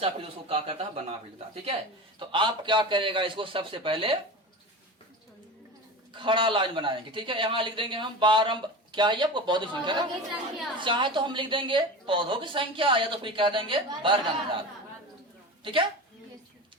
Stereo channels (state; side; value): normal; both; correlation 0.29